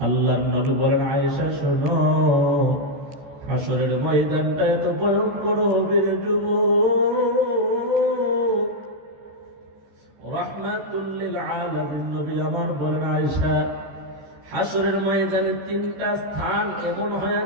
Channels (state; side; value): late; left; 14 ms